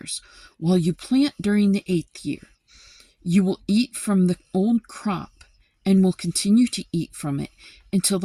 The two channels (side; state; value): both; identical; correlation 1.00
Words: while you plant during the 8th year. You will eat from the old crop and will continue to eat from it until the